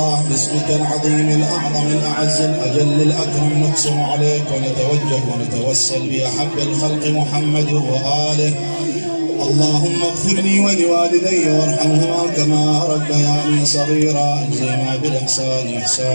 باسمك العظيم الأعظم الأعز الأجل الأكرم نقسم عليك ونتوجه ونتوسل بأحب الخلق محمد وآله اللهم اغفر لي ولوالدي وارحمهما كما ربياني صغيرا اجزينا بالإحسان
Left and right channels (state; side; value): inverted; both; correlation -1.00